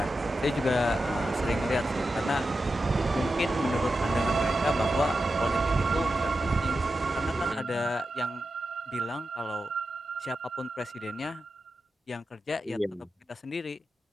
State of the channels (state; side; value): normal; both; correlation 0.90